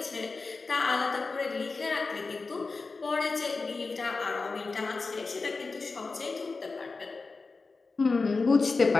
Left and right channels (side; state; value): right; quieter; 4.0 dB